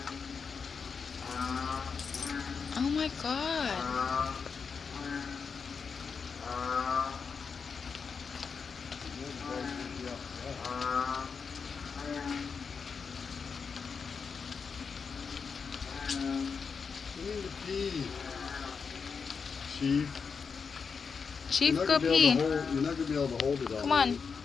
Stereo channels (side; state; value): right; quieter; 5.7 dB